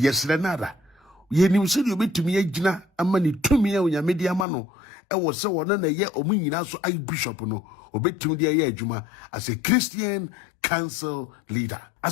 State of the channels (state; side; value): drops out; right; at 4.5 s